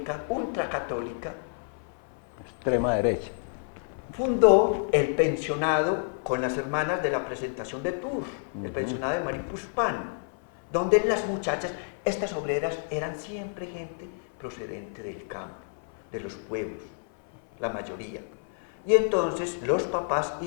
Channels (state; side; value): silent; right; 56 dB below the other